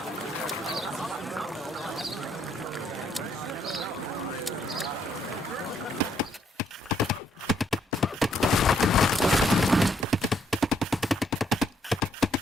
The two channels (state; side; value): normal; both; correlation 0.71